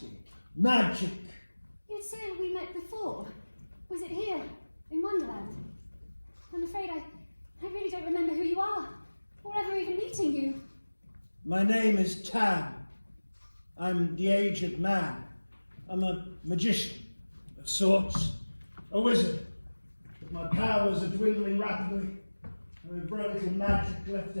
Magic! You'd said we met before. Was it here, in Wonderland? I'm afraid I really don't remember who you are, or ever even meeting you. My name is Tam. I'm the aged man. I'm a magician, of sorts. A wizard. But my powers are dwindling rapidly. There is very little magic left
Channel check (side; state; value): both; inverted; correlation -1.00